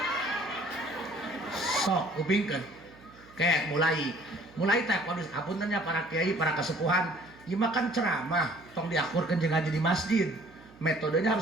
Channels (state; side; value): noise; right; hum, 24 dB below the sound